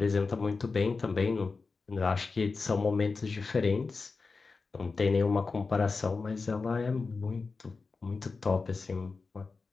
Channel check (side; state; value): right; quieter; 4.3 dB